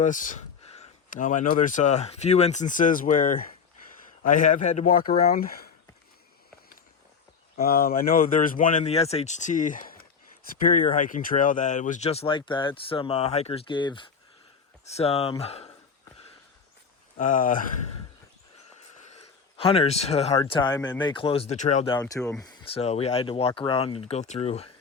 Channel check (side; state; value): right; quieter; 5.8 dB